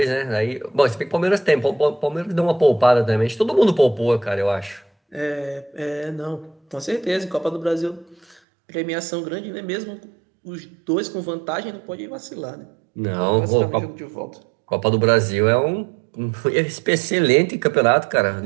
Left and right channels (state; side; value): drops out; left; at 8.4 s